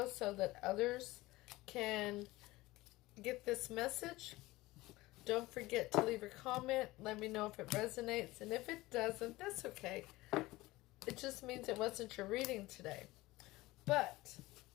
so that others can get this message. Don't forget to leave a comment. Let me know if it resonates. And if it doesn't, that's okay. It just means it wasn't your reading today. But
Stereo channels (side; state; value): right; quieter; 19.4 dB